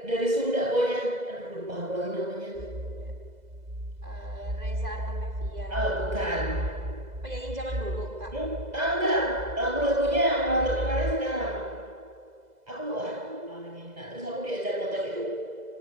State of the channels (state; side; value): late; left; 2.0 ms